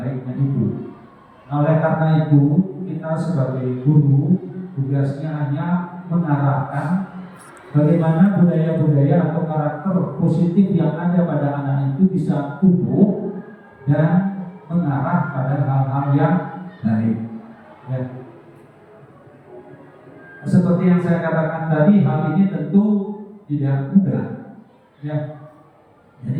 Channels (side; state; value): both; identical; correlation 1.00